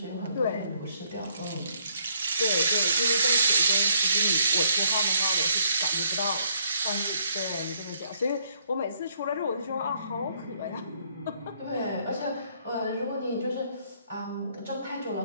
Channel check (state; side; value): inverted; both; correlation -0.69